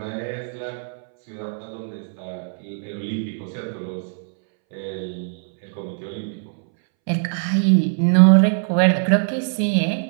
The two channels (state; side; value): silent; left; 64 dB below the other